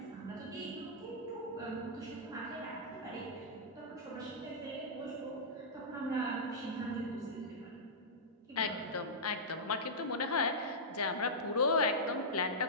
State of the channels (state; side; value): normal; both; correlation -0.13